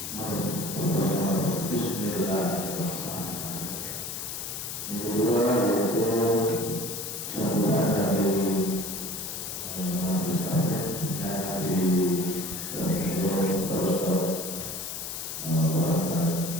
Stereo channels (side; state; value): left; noise; hiss, 6 dB below the sound